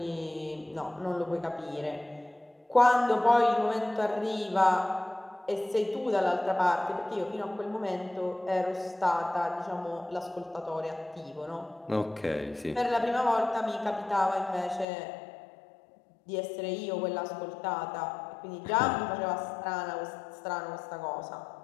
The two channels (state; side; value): drops out; right; at 14.9 s